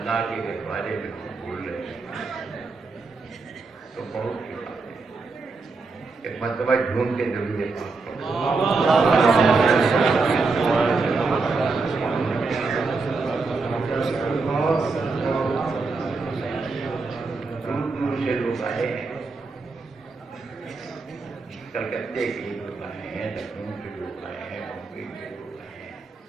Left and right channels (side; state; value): left; quieter; 4.0 dB